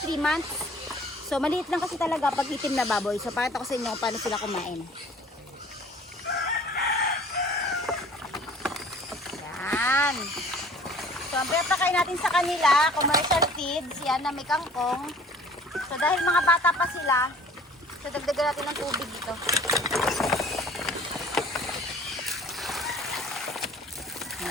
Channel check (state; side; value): normal; both; correlation 0.50